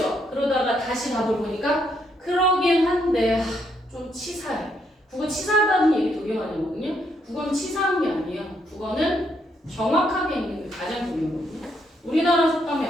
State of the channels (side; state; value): both; normal; correlation 0.74